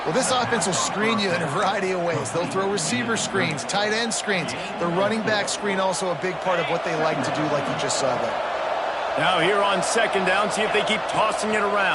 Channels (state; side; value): identical; both; correlation 1.00